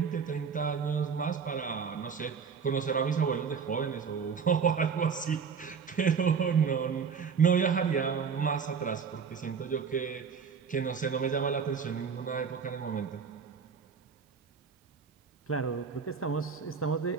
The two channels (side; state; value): left; quieter; 6.2 dB